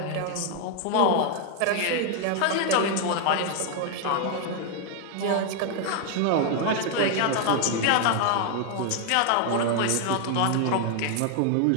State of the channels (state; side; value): different; both; correlation 0.00